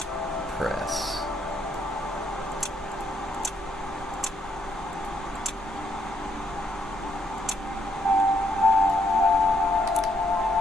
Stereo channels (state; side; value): normal; both; correlation 0.72